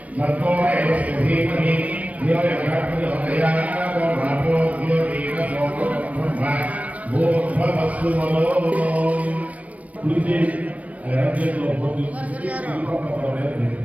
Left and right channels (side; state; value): left; late; 0.067 ms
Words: మత్తో ఏవస్య ధీమహి ధియో యజ్ఞాపయోదయాః భావో ధియో దీన సోమబ్రహ్మ భూర్భువస్సు మనోం. కుడితే రాజ్యంలో